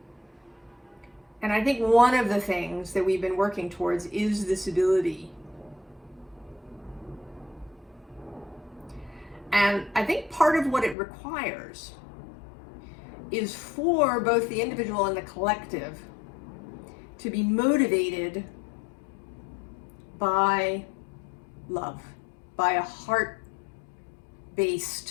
And I think one of the things that we've been working towards is this ability. And I think part of what it requires is for both the individual and the collective to be motivated by love, by a heart-based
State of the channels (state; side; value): drops out; right; at 11.0 s